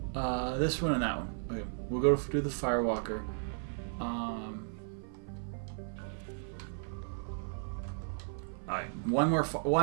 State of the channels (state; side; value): silent; left; 54 dB below the other